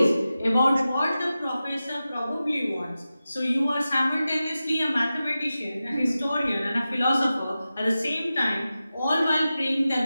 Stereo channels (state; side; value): inverted; both; correlation -0.94